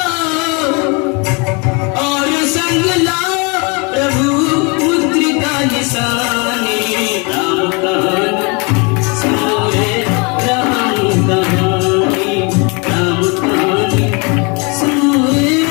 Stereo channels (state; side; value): quieter; right; 31.2 dB